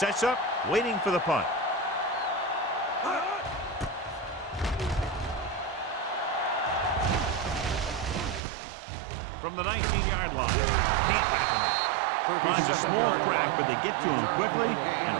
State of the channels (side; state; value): left; drops out; at 8.4 s